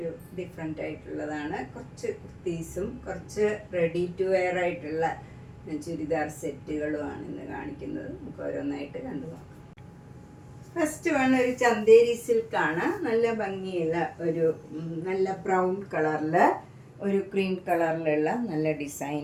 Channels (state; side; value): identical; both; correlation 1.00